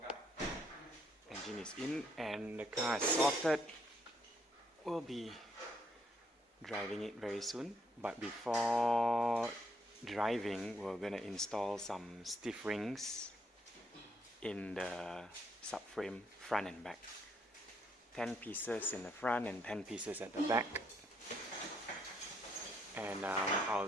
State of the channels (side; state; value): both; normal; correlation 0.72